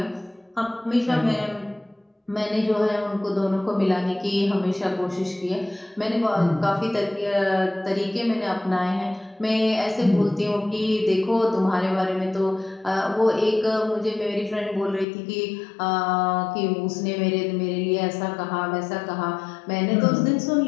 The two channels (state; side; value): drops out; right; at 15.1 s